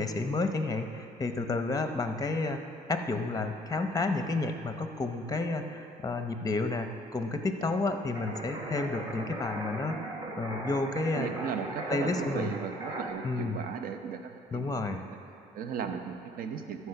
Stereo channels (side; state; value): both; normal; correlation 0.61